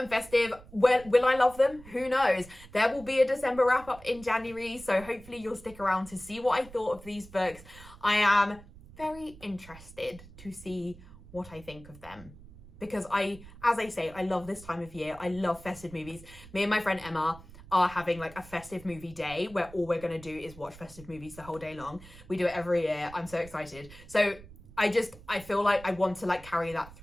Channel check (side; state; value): right; noise; rumble, 19 dB below the sound